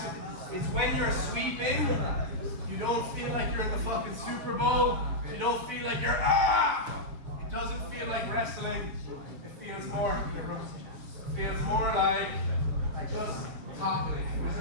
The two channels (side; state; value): left; late; 7.1 ms